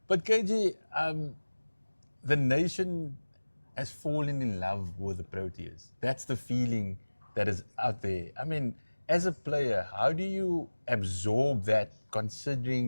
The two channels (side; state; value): both; inverted; correlation -1.00